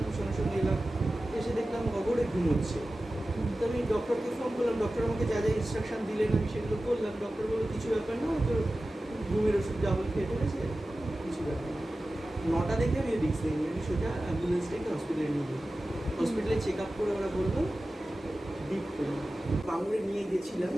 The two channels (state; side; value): normal; both; correlation 0.95